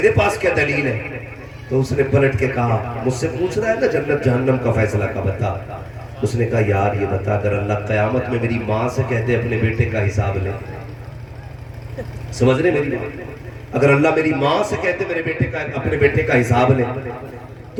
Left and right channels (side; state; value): both; identical; correlation 1.00